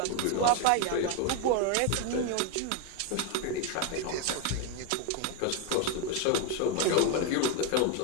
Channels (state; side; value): different; both; correlation 0.01